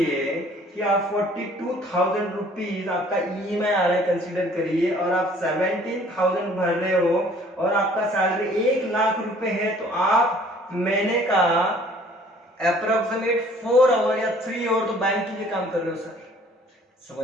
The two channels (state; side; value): normal; both; correlation 0.55